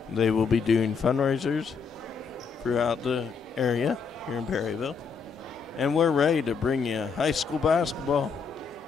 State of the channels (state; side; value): quieter; right; 5.5 dB